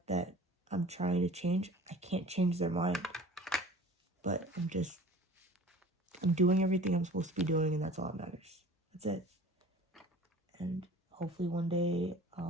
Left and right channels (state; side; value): normal; both; correlation 0.44